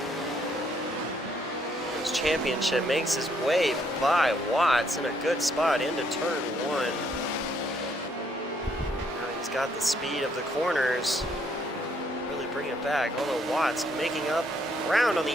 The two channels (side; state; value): both; normal; correlation 0.70